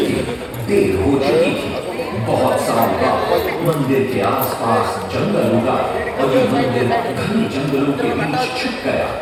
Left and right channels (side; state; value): both; identical; correlation 1.00